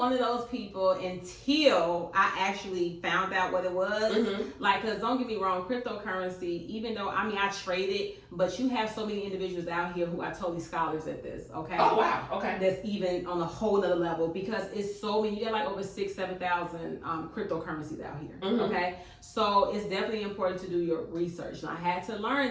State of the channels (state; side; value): identical; both; correlation 1.00